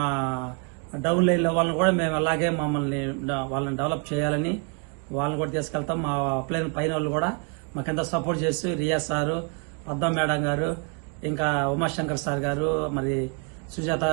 డౌన్ లైన్ లో వాళ్ళని కూడా మేము అలాగే వాళ్ళని డెవలప్ చేయాలని వాళ్ళని కూడా తీసుకెళ్తాం. మా ప్లేన్ పైన వాళ్ళు కూడా మాకెంతో సపోర్ట్ చేసి రియా సారు, పద్మ మేడం గారు, ఇంకా ఉమాశంకర్ సార్ గారు, మరి సుజాత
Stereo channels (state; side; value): quieter; left; 36.4 dB